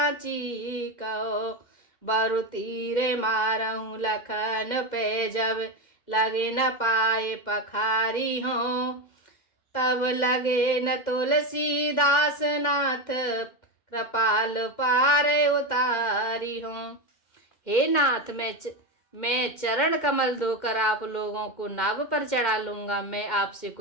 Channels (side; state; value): right; late; 2.1 ms